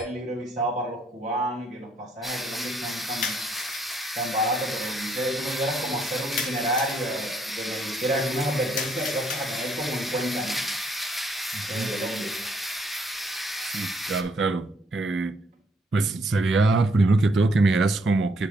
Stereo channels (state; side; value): normal; both; correlation 0.70